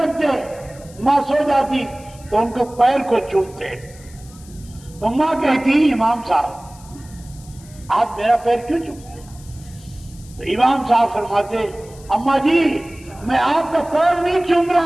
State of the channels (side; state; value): left; noise; hiss, 23 dB below the sound